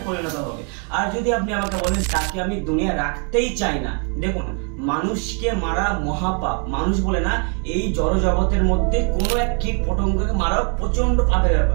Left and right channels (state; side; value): quieter; left; 39.5 dB